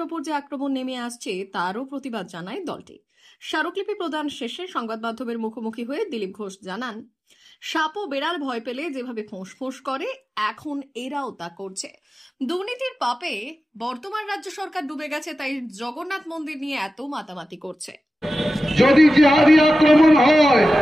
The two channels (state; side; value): normal; both; correlation 0.94